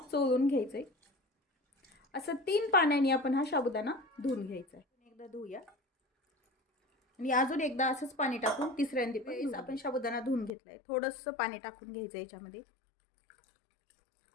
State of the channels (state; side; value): drops out; right; at 10.5 s